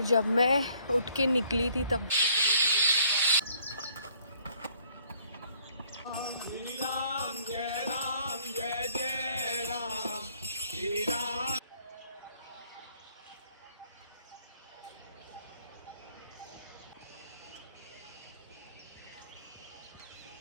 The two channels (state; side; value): inverted; both; correlation -0.62